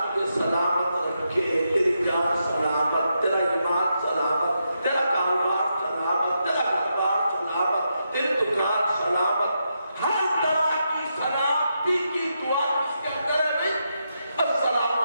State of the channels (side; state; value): both; inverted; correlation -0.83